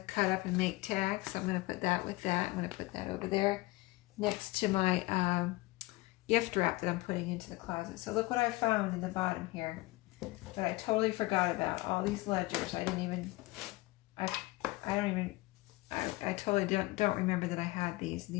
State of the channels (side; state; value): right; quieter; 21.0 dB